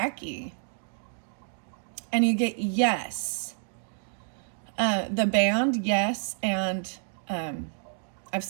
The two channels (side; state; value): left; silent; digital silence